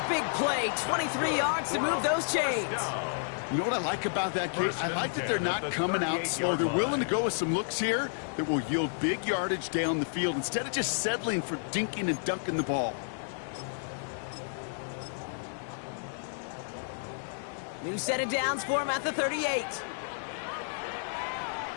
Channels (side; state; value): right; silent; digital silence